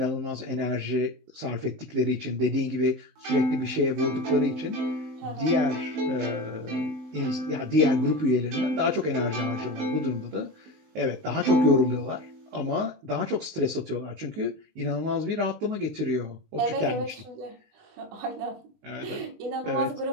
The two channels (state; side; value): late; left; 19 ms